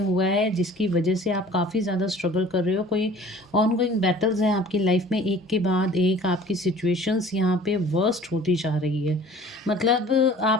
है जिसकी वजह से आप काफ़ी ज़्यादा स्ट्रगल कर रहे हो। कोई ऑनगोइंग बैटल्स हैं आपकी लाइफ में, एक के बाद एक आपकी सिचुएशंस यहाँ पे वर्स्ट होती जा रही है। मतलब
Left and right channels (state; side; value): normal; both; correlation 0.47